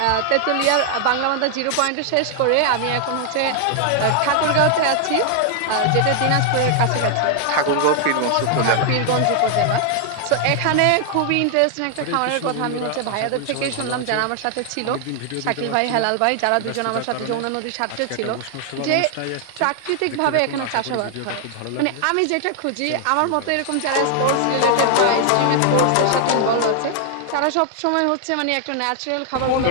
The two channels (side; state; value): both; different; correlation 0.00